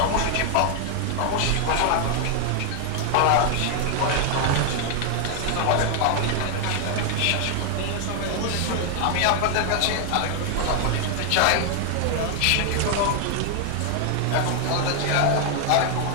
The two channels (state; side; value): different; both; correlation 0.00